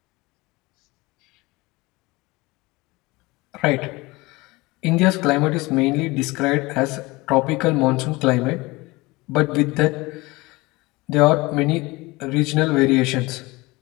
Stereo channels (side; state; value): right; quieter; 22.5 dB